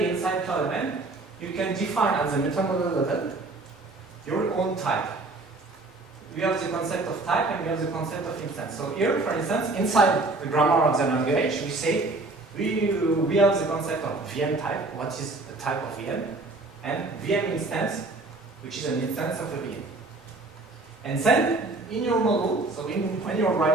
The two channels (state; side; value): quieter; left; 3.2 dB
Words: inside CloudML, you can define at the meta model level your own type. We have the concept of type and we have the concept of instance. So here, for instance, inside the grammar of the language, we say we have the concept of VM type, what is a type of VM, and VM instance, which is an instance of a VM. And then, in your model, so when you're